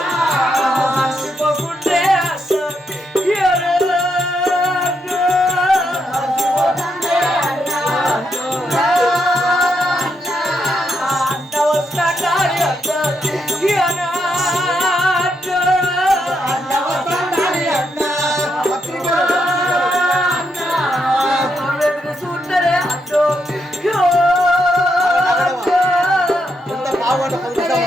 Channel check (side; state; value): both; normal; correlation 0.80